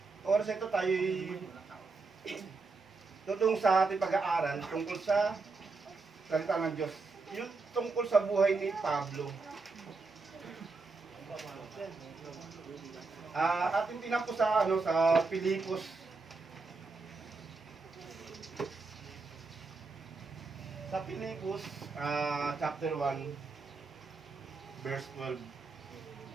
oras ito tayo tutong sa ating pag-aaral tungkol sa salita ng Diyos. Yung tungkol sa buhay ni Pablo. Ating tinampo sa sa Pilipos. Sa Pilipos, chapter 1, verse 12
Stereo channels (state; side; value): quieter; left; 4.0 dB